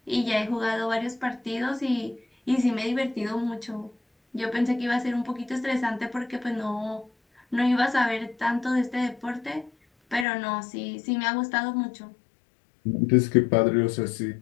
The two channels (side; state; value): right; drops out; at 10.2 s